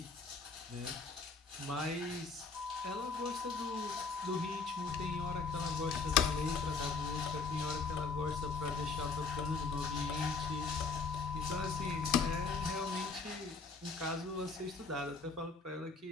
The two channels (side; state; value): right; quieter; 4.6 dB